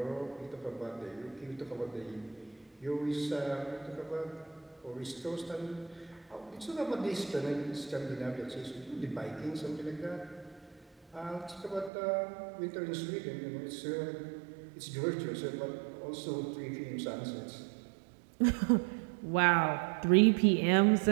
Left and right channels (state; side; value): drops out; left; at 11.9 s